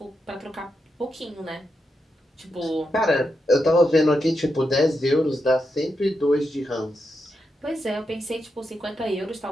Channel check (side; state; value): both; normal; correlation 0.85